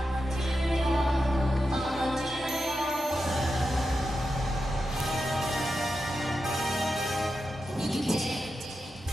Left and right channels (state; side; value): normal; both; correlation 0.89